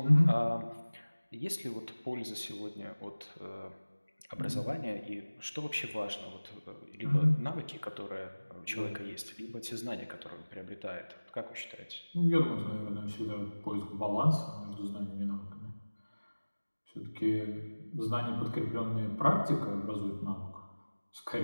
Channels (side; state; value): both; inverted; correlation -1.00